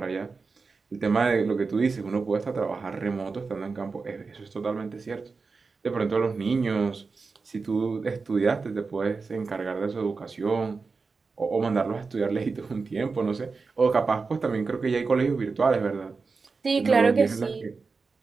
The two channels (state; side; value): quieter; left; 4.5 dB